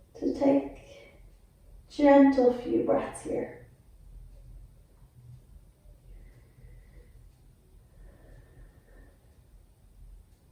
to take gentle few breaths here.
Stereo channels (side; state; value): both; identical; correlation 1.00